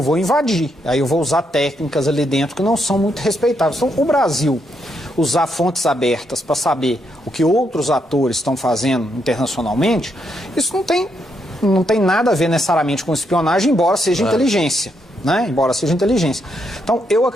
vou invadir, aí eu vou usar técnicas ali dentro que não são muito respeitáveis. Então, o Brasil usar fontes abertas para saber o que outros atores estão fazendo internacionalmente, isso não tem nada a ver necessariamente com espionagem, embora seja inteligência. né? Embora seja inteligência. Então, eu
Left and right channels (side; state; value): both; normal; correlation 0.78